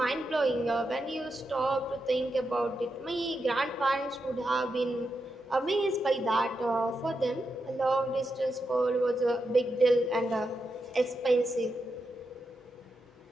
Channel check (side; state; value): both; normal; correlation 0.86